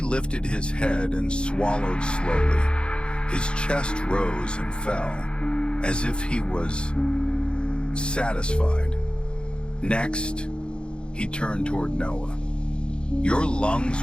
lifted his head and swallowed slowly. His chest rose and fell, as if he was satisfied. Next, he turned toward Noah. Your lungs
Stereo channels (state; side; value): late; right; 0.053 ms